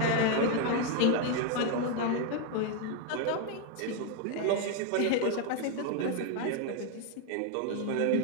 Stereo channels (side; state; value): both; different; correlation 0.01